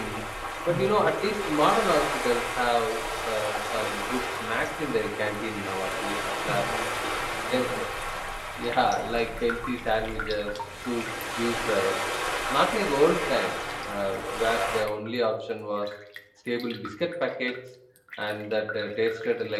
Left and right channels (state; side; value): identical; both; correlation 1.00